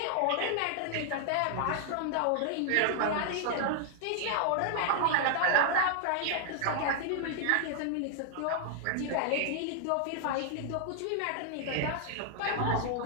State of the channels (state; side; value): different; both; correlation 0.00